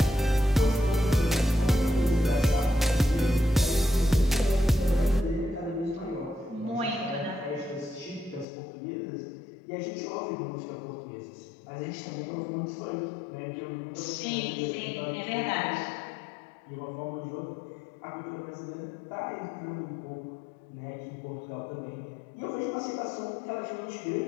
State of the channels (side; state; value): right; drops out; at 8.5 s